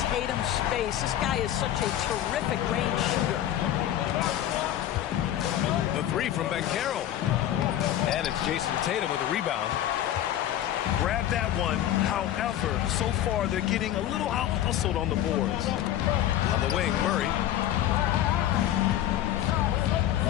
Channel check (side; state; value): right; quieter; 12.1 dB